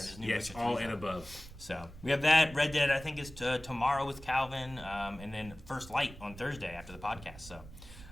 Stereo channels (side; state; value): right; noise; rumble, 17 dB below the sound